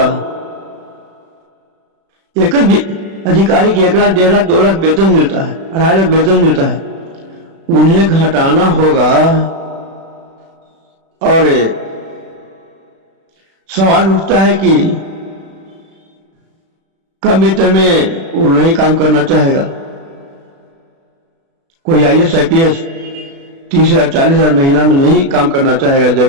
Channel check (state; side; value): late; left; 36 ms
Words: एक अधिकारी की 1 लाख, 1.5 लाख, 2 लाख वेतन मिलता है, 2.5 लाख वेतन मिलता है, उन्हें घटाना होगा। और सवाल उठता है कि कम वेतन में वो नहीं काम करना चाहेगा। कोई IAS, IPS 30,000, 40,000 महीना में नहीं काम करना चाहेगा,